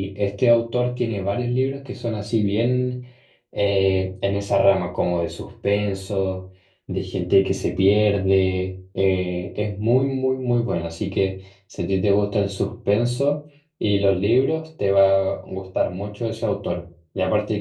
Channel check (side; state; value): both; identical; correlation 1.00